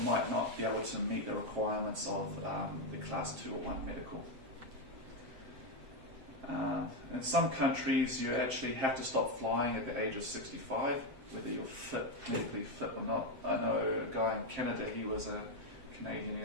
might not be able to meet the requirements of the Class 2 or 1 medical. In some countries, you actually have to stop flying at the age of 65, whether you're medically fit or not. I know a guy in Canada, he was a Canadian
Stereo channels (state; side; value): late; left; 7.7 ms